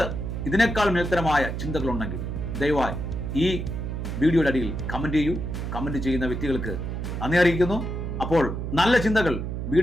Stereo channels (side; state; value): right; noise; hum, 4 dB below the sound